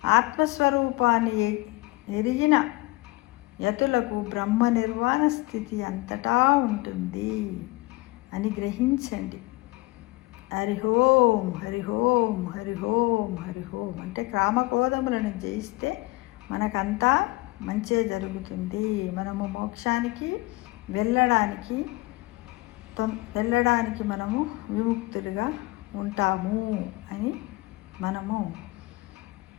ఆత్మస్వరూపాన్ని ఎరిగిన యతులకు బ్రహ్మ నిర్వాణ స్థితి అంతటా ఉంటుంది అని గ్రహించండి. హరి ఓం, హరి ఓం, హరి ఓం, హరి ఓం. అంటే కామక్రోధములను జయిస్తే మనకంతా మంచే జరుగుతుంది. మనము మోక్షానికి వెళ్ళడానికి మనము విముక్తులుగా ఉంటాము అని, మనము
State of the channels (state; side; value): quieter; right; 22.2 dB